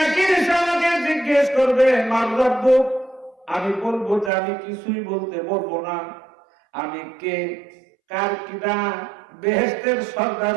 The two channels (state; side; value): drops out; left; at 4.3 s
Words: আমাকে জিজ্ঞেস করবে মার রাব্বুক, আমি বলবো যে আমি কিছুই বলতে বলবো না, আমি কে, কার কিনা, বেহেশতের সর্দার